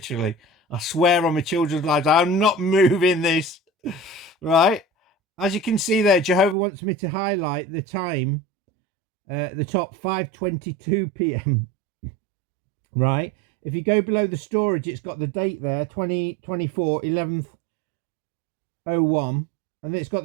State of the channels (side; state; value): left; drops out; at 6.6 s